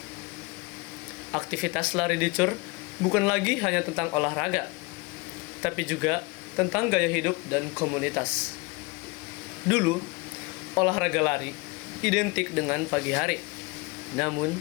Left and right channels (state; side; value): quieter; right; 26.2 dB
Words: Aktivitas lari di CUR bukan lagi hanya tentang olahraga, tapi juga tentang gaya hidup dan komunitas. Dulu, olahraga lari identik dengan pagi hari. Namun,